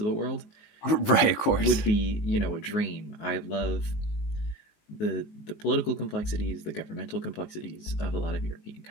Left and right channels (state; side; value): late; right; 19 ms